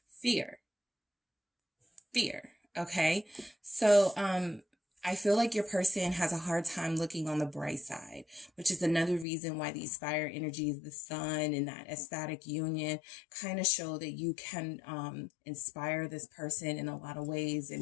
Fear. Okay, so I feel like your person has a hard time looking on the bright side, which is another reason why these fire energies, the sun and that ecstatic union kind of show that you can inspire this person in a lot of ways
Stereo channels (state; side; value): drops out; right; at 9.2 s